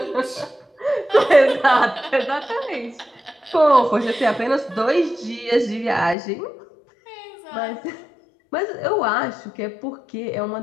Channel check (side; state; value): right; drops out; at 6.2 s